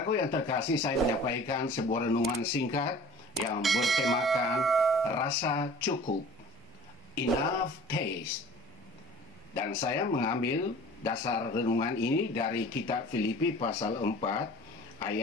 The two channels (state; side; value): normal; both; correlation 0.45